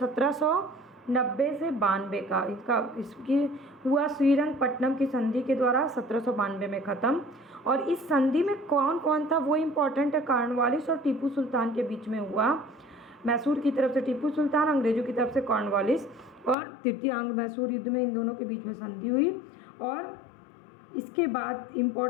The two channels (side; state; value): right; drops out; at 16.6 s